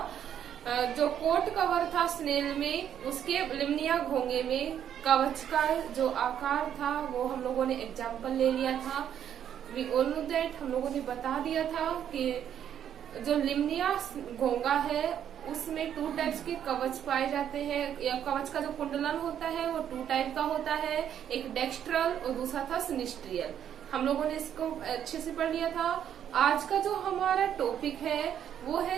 जो कोट कवर था स्नेल में, उसके लिम्निया घोंगे में कवच का जो आकार था वो हम लोगों ने एग्जाम्पल ले लिया था। वी ऑल नो दैट, हम लोगों ने बता दिया था कि जो लिम्निया घोंगा है उसमें 2 टाइप्स के कवच पाए जाते हैं, या कवच का जो कुंडलन होता है वो 2 टाइप का होता है, एक डेक्स्ट्रल और दूसरा था सिनिस्ट्रियल। हम लोगों ने इसको अच्छे से पढ़ लिया था। आज का जो हमारा टॉपिक है वो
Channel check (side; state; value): left; quieter; 9.6 dB